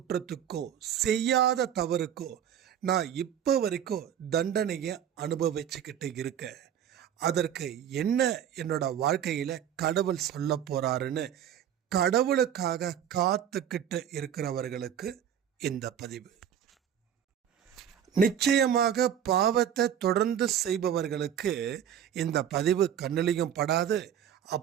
செய்யாத தவறுக்கோ நான் இப்போ வரைக்கும் தண்டனையை அனுபவிச்சுக்கிட்டு இருக்கேன். அதற்கு என்ன என்னோட வாழ்க்கையில் கடவுள் சொல்ல போறாருன்னு கடவுளுக்காக காத்துக்கிட்டு இருக்கிறவர்களுக்கு இந்த பதிவு. நிச்சயமாக பாவத்தை தொடர்ந்து செய்பவர்களுக்கு இந்த பதிவு கண்ணிலையும் படாது.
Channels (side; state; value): left; quieter; 9.5 dB